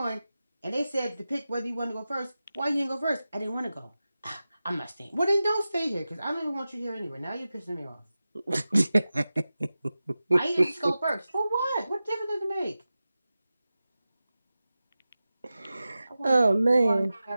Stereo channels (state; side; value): inverted; both; correlation -0.94